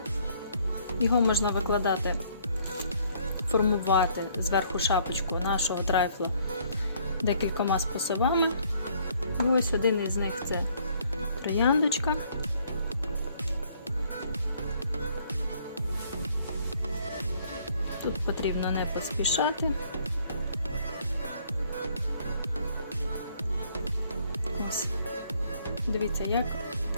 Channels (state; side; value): inverted; both; correlation -0.63